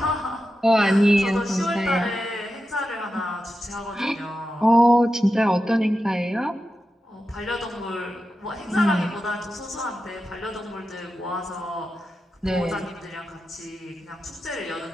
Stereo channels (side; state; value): both; normal; correlation 0.90